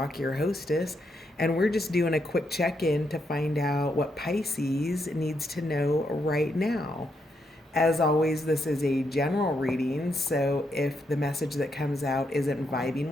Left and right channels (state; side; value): normal; both; correlation 0.79